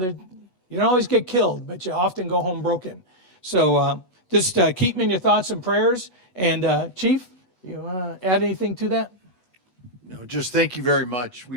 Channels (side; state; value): right; late; 8.1 ms